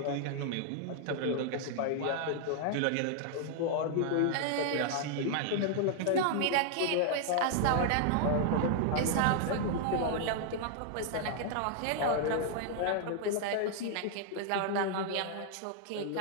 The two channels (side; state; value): both; different; correlation 0.00